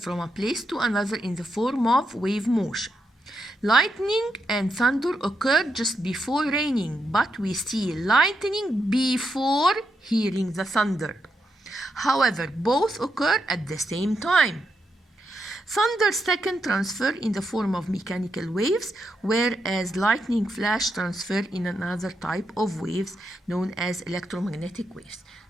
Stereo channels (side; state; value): both; normal; correlation 0.83